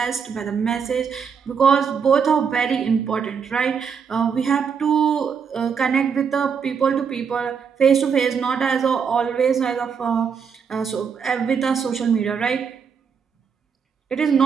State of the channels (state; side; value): quieter; left; 6.5 dB